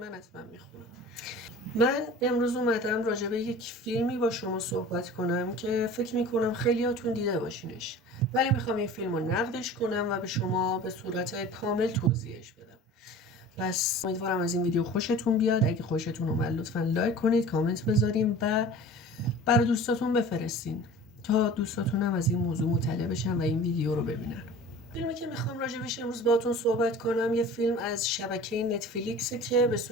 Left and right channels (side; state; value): both; normal; correlation 0.41